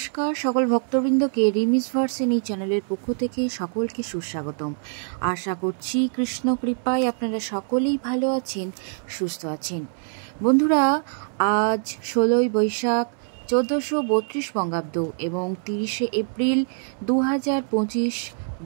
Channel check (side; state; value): left; silent; digital silence